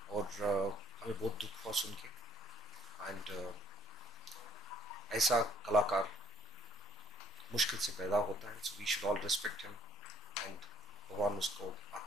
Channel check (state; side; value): normal; both; correlation 0.63